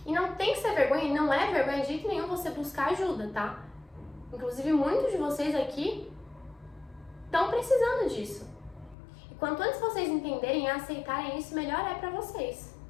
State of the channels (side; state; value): right; drops out; at 9.0 s